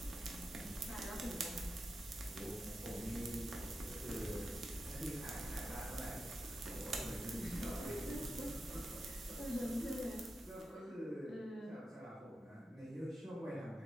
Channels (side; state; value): both; normal; correlation 0.89